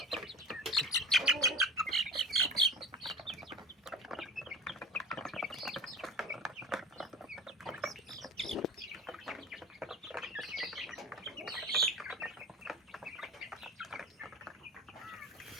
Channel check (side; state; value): both; normal; correlation 0.32